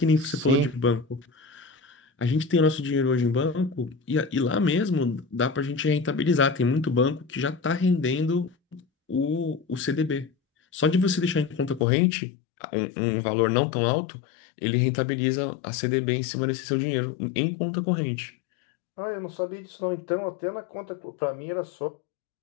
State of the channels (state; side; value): drops out; right; at 11.9 s